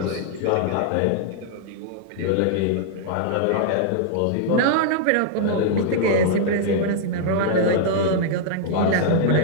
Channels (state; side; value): different; both; correlation -0.01